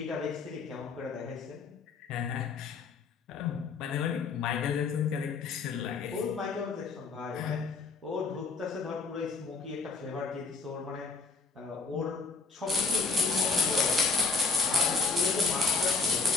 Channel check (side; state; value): right; quieter; 4.5 dB